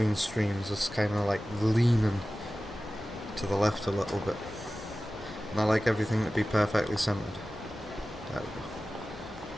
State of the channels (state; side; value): normal; both; correlation 0.96